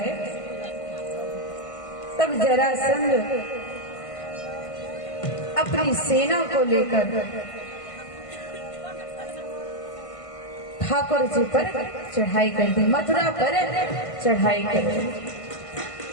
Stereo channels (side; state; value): right; late; 1.5 ms